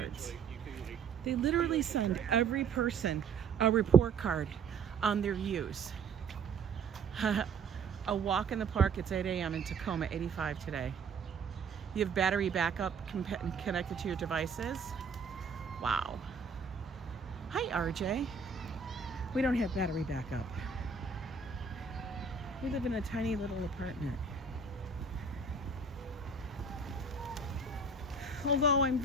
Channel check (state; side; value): quieter; left; 4.7 dB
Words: They literally send every person a report card on their use. A walk in the park, it's 8 a.m. in Tacoma, 85 today. You have battery backup connected to your devices. Wow. Hi, RJ. We don't have battery backup. We live in a tiny little apartment. Although I'm